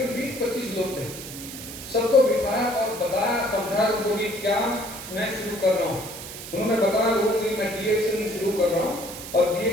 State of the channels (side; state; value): right; noise; hiss, 11 dB below the sound